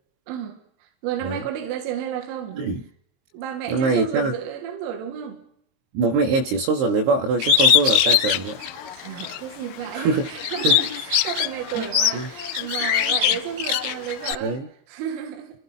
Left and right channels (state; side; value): late; left; 23 ms